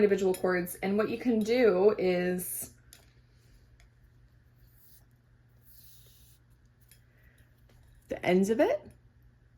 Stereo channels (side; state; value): both; identical; correlation 1.00